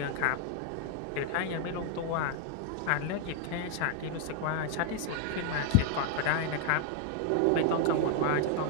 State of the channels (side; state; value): both; different; correlation 0.00